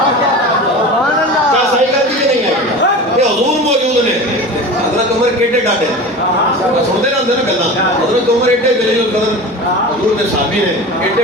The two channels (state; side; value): normal; both; correlation 0.32